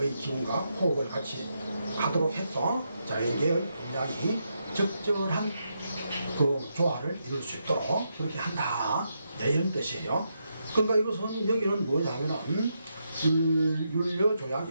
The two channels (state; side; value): inverted; both; correlation -0.82